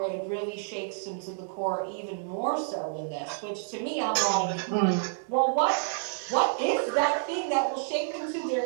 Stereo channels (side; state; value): left; silent; digital silence